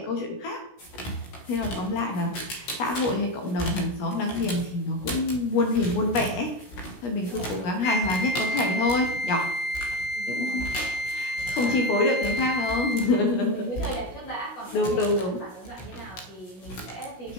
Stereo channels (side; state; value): right; late; 16 ms